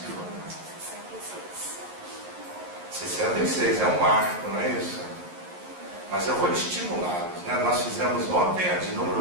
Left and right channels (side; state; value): left; late; 11 ms